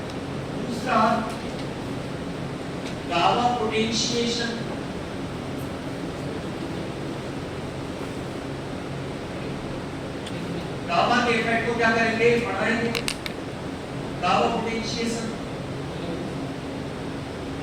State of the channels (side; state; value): both; identical; correlation 1.00